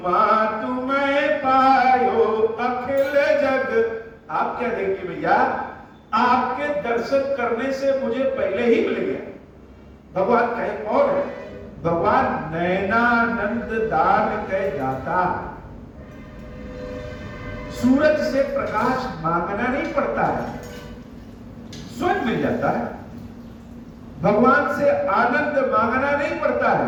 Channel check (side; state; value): both; identical; correlation 1.00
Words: तुम्हें पायो अखिल जग। आप क्या देंगे भैया? आपके दर्शन करने से मुझे पहले ही मिल गया। भगवान कहे कौन है? भगवान नयनानंद दान कह दाता। सूरज से प्रकाश मांगना नहीं पड़ता है, स्वयं मिल जाता है। भगवान से आनंद मांगना नहीं पड़ता